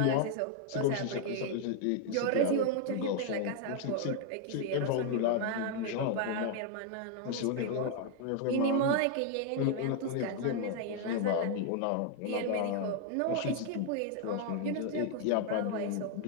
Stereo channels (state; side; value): different; both; correlation 0.00